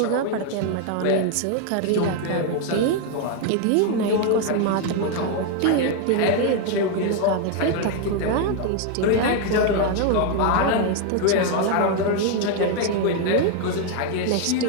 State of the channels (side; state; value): both; different; correlation 0.00